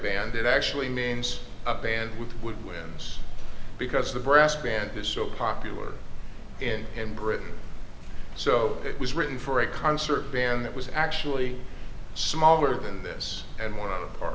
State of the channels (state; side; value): identical; both; correlation 1.00